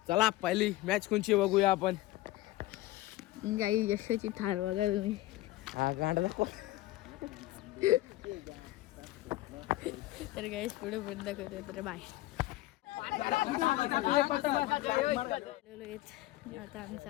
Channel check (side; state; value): right; quieter; 17.2 dB